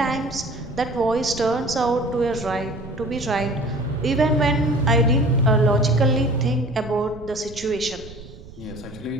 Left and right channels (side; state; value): right; noise; rumble, 17 dB below the sound